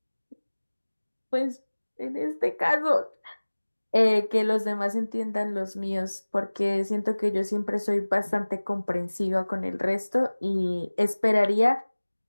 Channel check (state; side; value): inverted; both; correlation -1.00